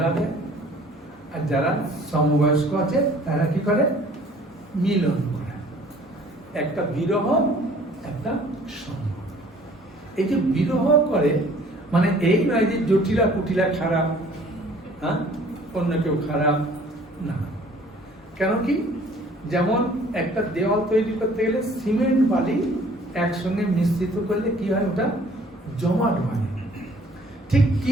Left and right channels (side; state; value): both; normal; correlation 0.54